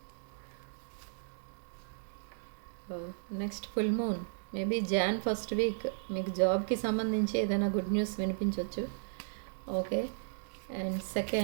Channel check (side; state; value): left; silent; digital silence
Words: Next full moon, maybe Jan first week మీకు జాబ్కి సంబంధించి ఏదైనా గుడ్ న్యూస్ వినిపించవచ్చు. ఓకే. అండ్